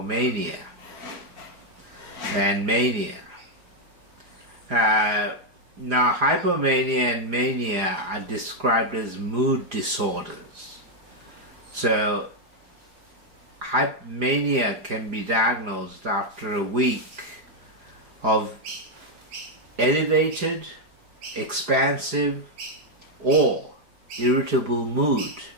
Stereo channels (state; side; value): late; left; 4.9 ms